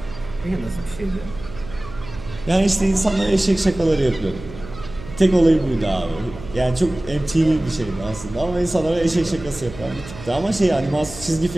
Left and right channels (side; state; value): right; noise; hum, 14 dB below the sound